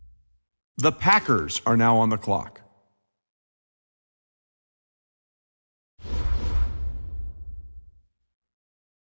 The Packers are now on the clock.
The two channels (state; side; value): inverted; both; correlation -1.00